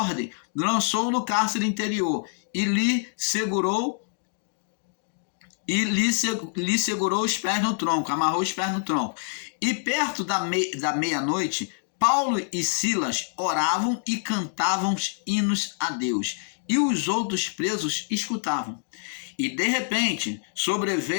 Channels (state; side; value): silent; right; digital silence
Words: lançou no cárcere interior e lhe segurou os pés no tronco, amarrou os pés no tronco. E perto da meia-noite, Paulo e Silas oravam e cantavam hinos a Deus, e os outros presos escutavam. E de repente